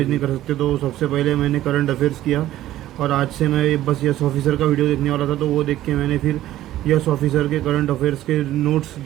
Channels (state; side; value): quieter; left; 13.9 dB